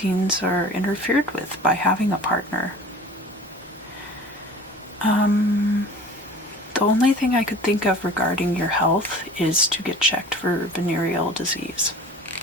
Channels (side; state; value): both; normal; correlation 0.42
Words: are interfered with by having a partner. The only thing I could think of regarding your health is to get checked for venereal disease.